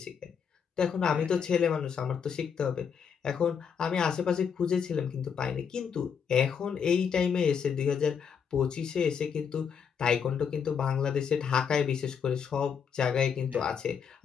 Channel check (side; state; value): right; quieter; 7.0 dB